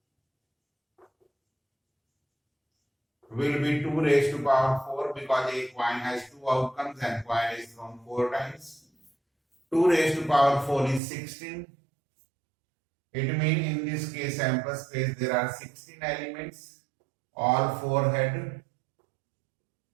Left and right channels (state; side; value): drops out; left; at 11.0 s